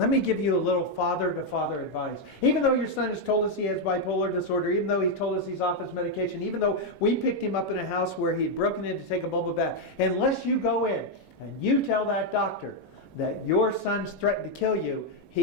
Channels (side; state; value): both; normal; correlation 0.01